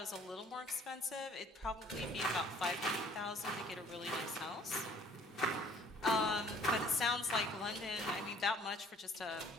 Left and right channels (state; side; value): normal; both; correlation 0.55